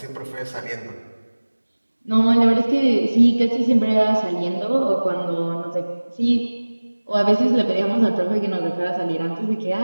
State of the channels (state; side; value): inverted; both; correlation -1.00